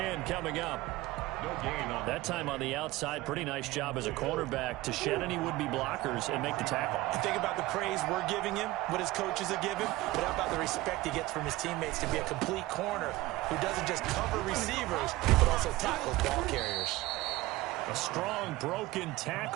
coming up. No gain on that time on the outside. Pretty nice job as a cornerback to shed any would-be blockers and make the tackle. You think about the praise we're giving him, what his coaches are giving, but how about the respect he gets from his teammates to be a complete corner who doesn't just cover receivers, but also tackles ball carriers. A strong broken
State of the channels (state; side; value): quieter; left; 18.5 dB